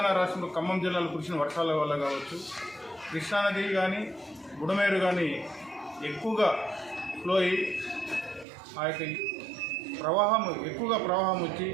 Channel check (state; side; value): drops out; left; at 8.5 s